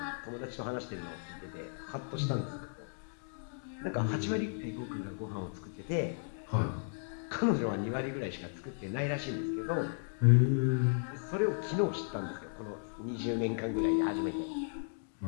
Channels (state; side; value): silent; right; digital silence